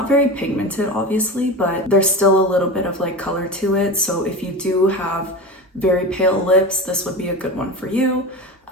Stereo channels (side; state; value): both; normal; correlation 0.26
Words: very pigmented, obviously, but there's still a little bit of like color to it. So if you do have very pale lips, this would be a good one for you.